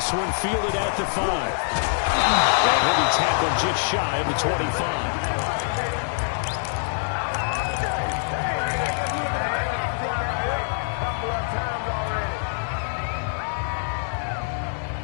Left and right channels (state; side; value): silent; right; digital silence